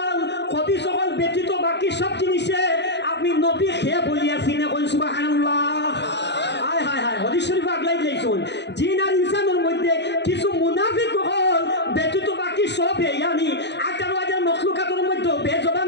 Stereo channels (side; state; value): right; late; 0.50 ms